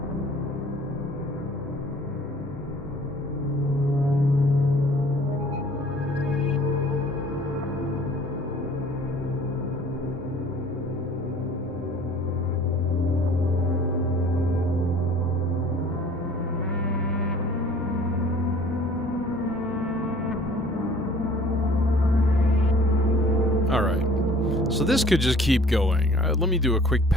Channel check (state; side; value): normal; both; correlation 0.52